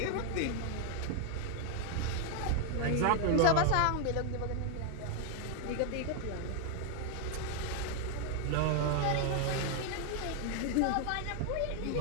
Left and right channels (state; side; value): different; both; correlation 0.00